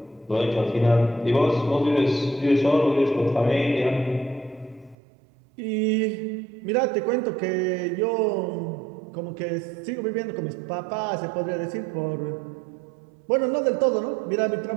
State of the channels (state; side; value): drops out; left; at 5.0 s